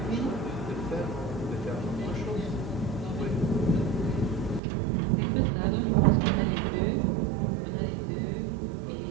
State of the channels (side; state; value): left; drops out; at 4.6 s